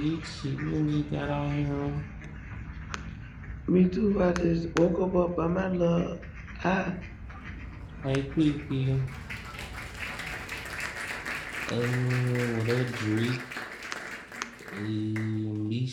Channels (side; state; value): both; identical; correlation 1.00